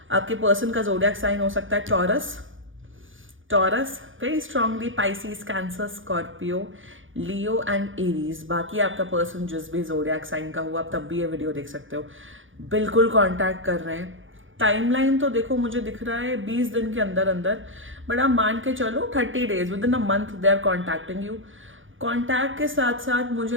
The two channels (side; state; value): left; late; 0.57 ms